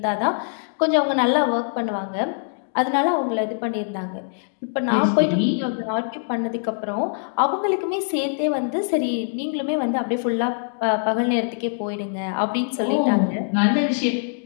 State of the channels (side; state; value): right; silent; digital silence